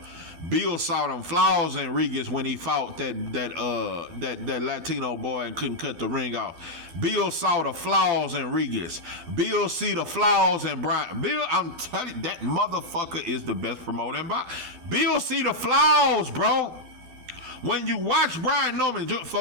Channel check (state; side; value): late; left; 12 ms